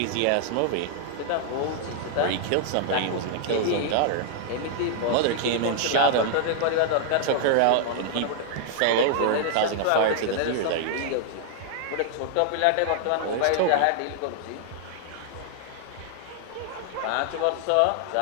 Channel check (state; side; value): different; both; correlation -0.01